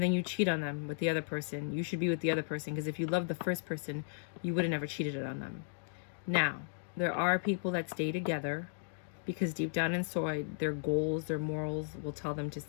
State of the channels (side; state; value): right; silent; digital silence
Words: then you cheat on them with the other person. You should be with the other person, because if you love the first person, you would have never cheated on them. Now, there are people that stay together because deep down inside, their goals, their morals will tell them to